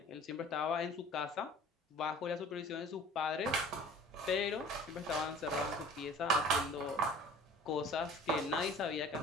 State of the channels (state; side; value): normal; both; correlation 0.46